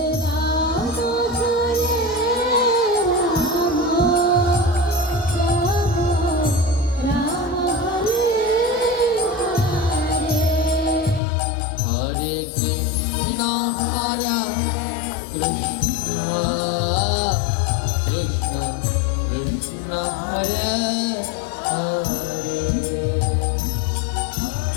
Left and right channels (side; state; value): right; drops out; at 11.2 s